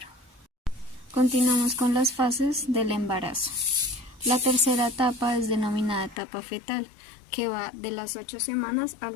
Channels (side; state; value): right; drops out; at 6.2 s